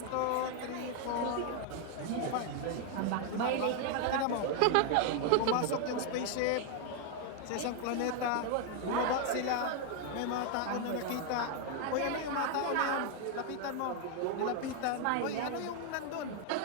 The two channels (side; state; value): both; different; correlation 0.00